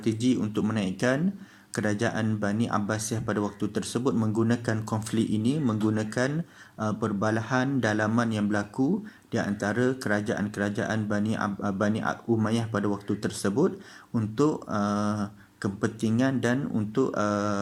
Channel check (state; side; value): identical; both; correlation 1.00